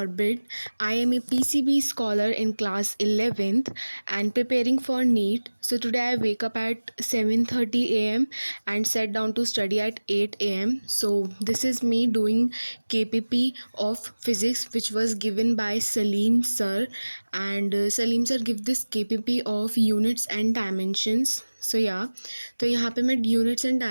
I am a PCB scholar in class 11th and preparing for NEET. So today I wake up at 7:30 a.m. and sat down to study at 8 a.m. So this is me doing KPP of physics which was given by Salim sir, and Salim sir give this KPP of units and dimensions. So तो यहाँ पे मैं यूनिट्स एंड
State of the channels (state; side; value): inverted; both; correlation -1.00